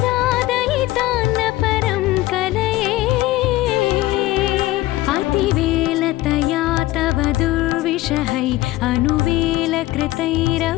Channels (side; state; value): right; quieter; 17.2 dB